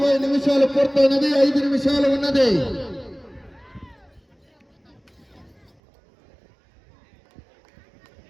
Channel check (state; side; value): drops out; left; at 5.7 s